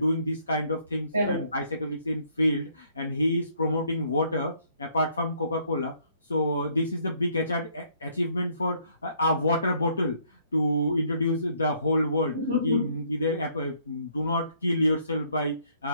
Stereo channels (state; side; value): inverted; both; correlation -0.66